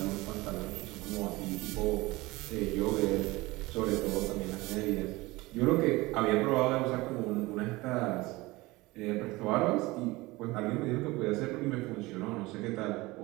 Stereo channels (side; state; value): left; quieter; 21.2 dB